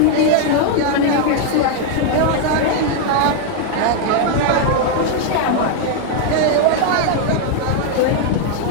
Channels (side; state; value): both; different; correlation 0.00